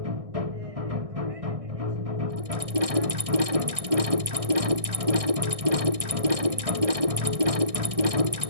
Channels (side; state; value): left; late; 1.6 ms